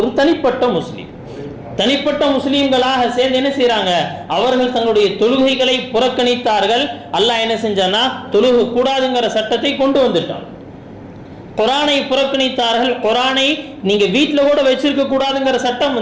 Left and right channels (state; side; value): identical; both; correlation 1.00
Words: தனிப்பட்ட முஸ்லீம்களாக சேர்ந்து என்ன செய்யறாங்க, அவர்கள் தங்களுடைய தொழுகைகளை புறக்கணித்தார்கள். அல்லாஹ் என்ன செஞ்சானா, தொழுகை கூடாதுங்கிற சட்டத்தை கொண்டு வந்துட்டான். குர்ஆனை புறக்கணித்தார்கள். குர்ஆனை நீங்க வீட்டுல கூட வச்சிருக்க கூடாதுங்கிற சட்டம்